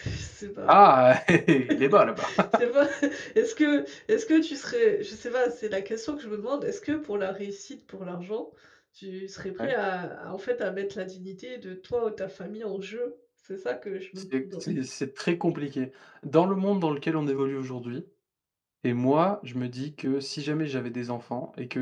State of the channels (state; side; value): identical; both; correlation 1.00